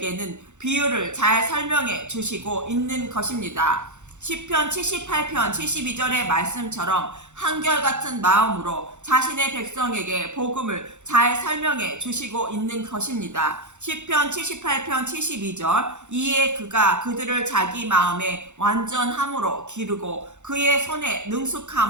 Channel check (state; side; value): late; left; 0.84 ms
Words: 비유를 잘 설명해 주시고 있는 것입니다. 시편 78편 72절의 말씀처럼 한결같은 마음으로 자신의 백성에게 복음을 잘 설명해 주시고 있는 것입니다. 시편 78편 72절 이에 그가 그들을 자기 마음에 완전함으로 기르고 그의 손에